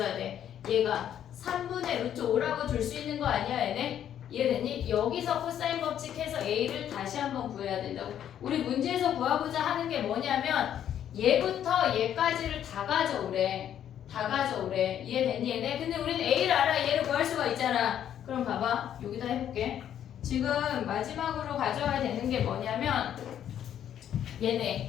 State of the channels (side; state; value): right; quieter; 10.1 dB